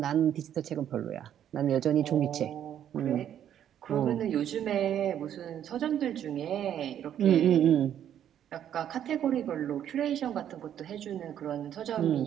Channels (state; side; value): quieter; left; 10.1 dB